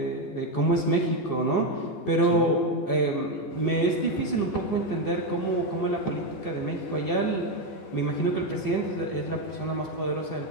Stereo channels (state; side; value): late; right; 14 ms